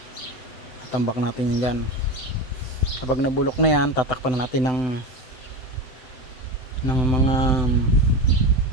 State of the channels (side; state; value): right; late; 7.8 ms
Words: Tambak natin yung gan. Kapag nabulok na yan, tatakpan na natin ng mga